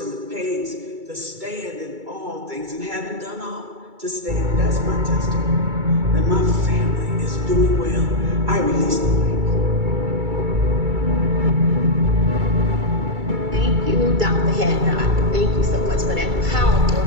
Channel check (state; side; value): late; left; 2.3 ms